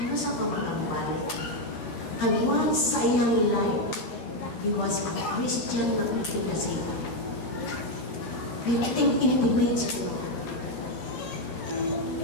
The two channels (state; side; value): late; right; 13 ms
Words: sa pamagambali? And once sa iyang life, he was a Christian na Christian na siya. Piting inipimate siya.